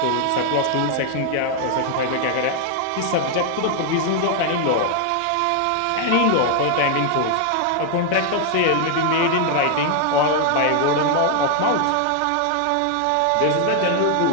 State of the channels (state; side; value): different; both; correlation 0.00